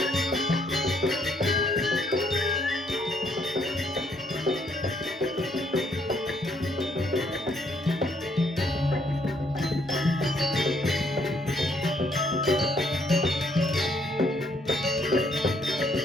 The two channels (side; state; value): both; normal; correlation 0.69